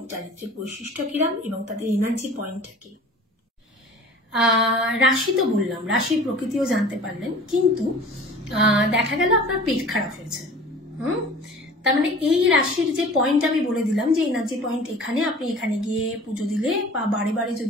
চারিত্রিক বৈশিষ্ট্য কিরাম এবং তাদের এনার্জি পয়েন্টটা কি। রাশি তো বললাম, রাশির প্রকৃতিও জানতে পারলেন, কিন্তু দেখা গেল আপনার পেট খারাপ হয়েছে। তার মানে এই রাশির যে পয়েন্ট আমি বলে দিলাম যে এনার্জি পয়েন্ট এখানে, আপনি এখানে গিয়ে পুজো দিলে বা বারে বারে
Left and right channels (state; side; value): normal; both; correlation 0.43